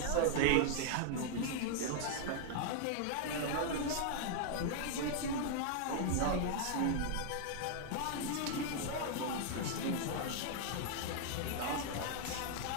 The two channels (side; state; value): both; different; correlation -0.01